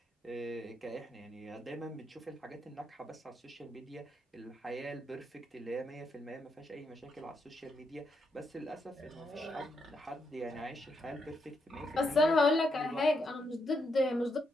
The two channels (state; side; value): normal; both; correlation 0.80